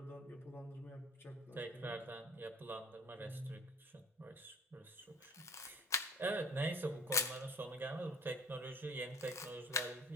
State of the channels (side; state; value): both; normal; correlation 0.44